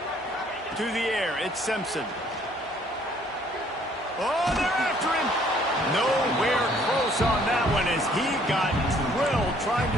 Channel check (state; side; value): normal; both; correlation 0.61